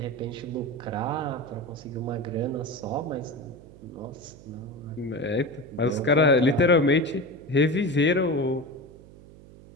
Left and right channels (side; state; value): right; noise; hum, 20 dB below the sound